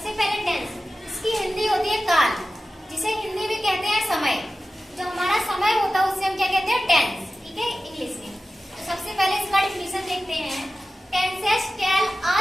पहले टेंस, इसकी हिंदी होती है काल, जिसे हिंदी में कहते हैं समय। जो हमारा समय होता है उससे हम क्या कहते हैं, टेंस, ठीक है, इंग्लिश में। तो सबसे पहले इसका डिफिनेशन देखते हैं। Tenses tell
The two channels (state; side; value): normal; both; correlation 0.95